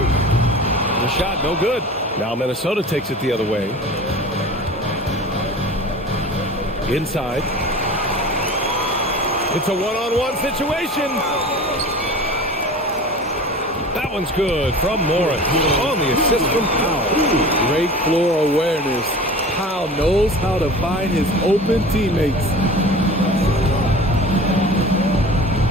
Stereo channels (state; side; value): normal; both; correlation 0.38